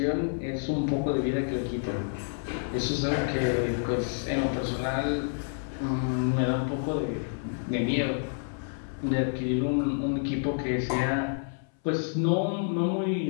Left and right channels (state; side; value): silent; right; 59 dB below the other